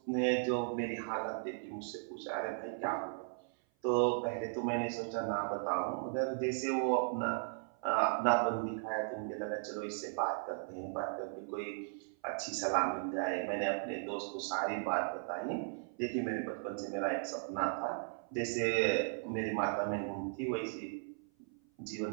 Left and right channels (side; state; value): left; silent; 53 dB below the other